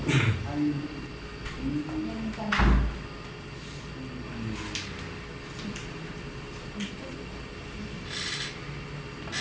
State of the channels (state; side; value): identical; both; correlation 1.00